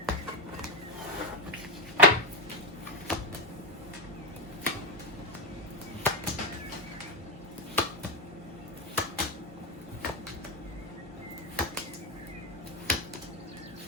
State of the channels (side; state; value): both; normal; correlation 0.12